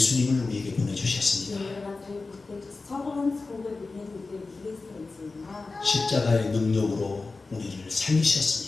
우리에게 보내주셨습니다. 십자가의 능력으로 우리를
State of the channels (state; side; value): quieter; right; 3.8 dB